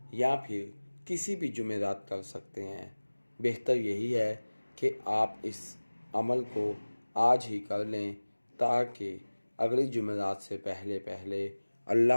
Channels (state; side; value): inverted; both; correlation -1.00